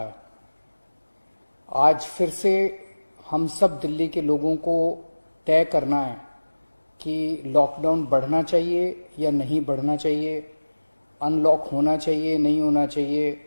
आज फिर से हम सब दिल्ली के लोगों को तय करना है कि लॉकडाउन बढ़ना चाहिए या नहीं बढ़ना चाहिए, अनलॉक होना चाहिए नहीं होना चाहिए।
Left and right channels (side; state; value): both; inverted; correlation -1.00